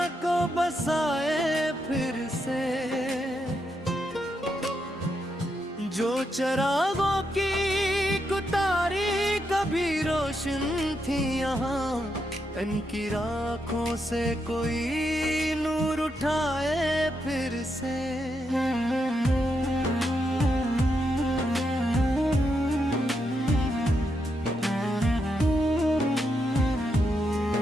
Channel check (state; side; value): normal; both; correlation 0.82